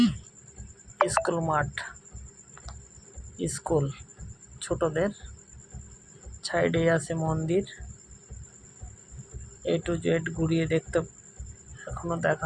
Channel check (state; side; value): identical; both; correlation 1.00